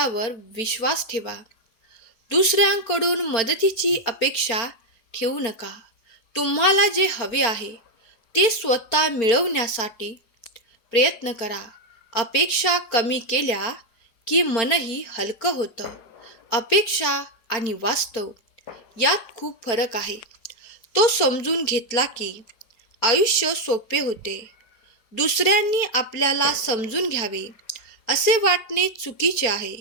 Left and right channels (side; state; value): right; late; 4.4 ms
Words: विश्वास ठेवा. दुसऱ्यांकडून मदतीची अपेक्षा ठेवू नका. तुम्हाला जे हवे आहे ते स्वतः मिळवण्यासाठी प्रयत्न करा. अपेक्षा कमी केल्या की मनही हलकं होतं. अपेक्षा आणि वास्तव यात खूप फरक आहे. तो समजून घेतला की आयुष्य सोपे होते. दुसऱ्यांनी आपल्याला समजून घ्यावे असे वाटणे चुकीचे आहे.